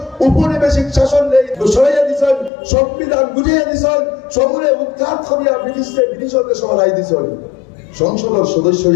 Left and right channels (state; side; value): drops out; right; at 2.5 s